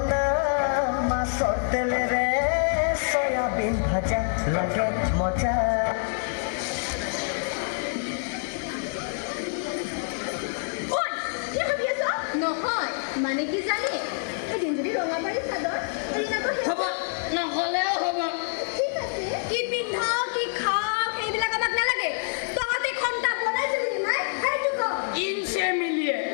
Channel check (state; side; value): silent; right; 61 dB below the other